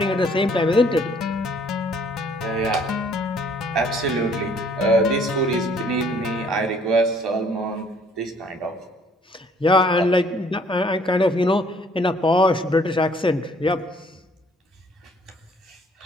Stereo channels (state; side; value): normal; both; correlation 0.60